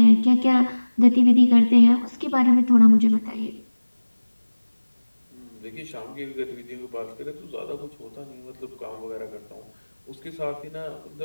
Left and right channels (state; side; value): inverted; both; correlation -1.00